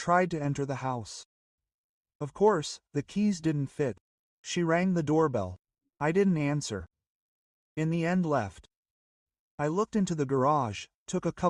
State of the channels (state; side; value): identical; both; correlation 1.00